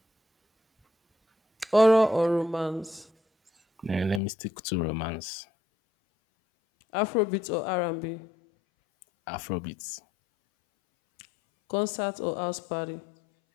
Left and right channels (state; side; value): drops out; right; at 4.2 s